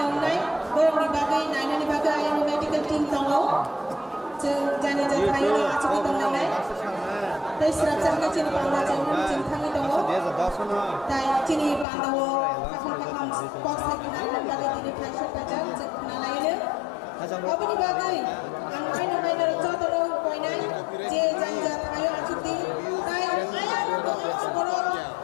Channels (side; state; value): right; drops out; at 11.9 s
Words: nai borong di bagai naina ni bagai ayam medical team tongo jeng jani ja thai na achu ki dong nai tai srap jang chini panda jang jing thangi tongo tai chini panda wo kakam box hai kina nan bagai dini phai ka jang jeng na laile abani bagai ang kaina kaina joto no koinai je jang ja thayo achuti tai ayam to boro